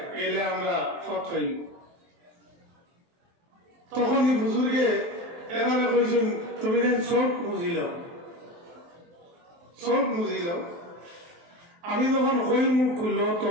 গেলে আমরা পথ পাই। তখন এই বুজুর্গে এবারে কইছেন তুমি চোখ বুঝিল, চোখ বুঝিল। আমি যখন কই মুখ খুললো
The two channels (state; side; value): late; left; 23 ms